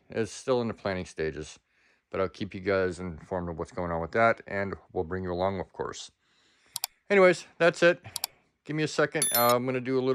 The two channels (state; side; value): identical; both; correlation 1.00